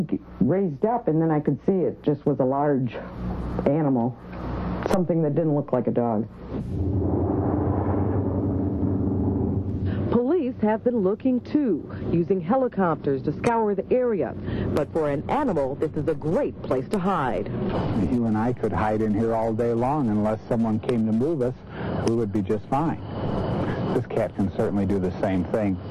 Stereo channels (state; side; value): identical; both; correlation 1.00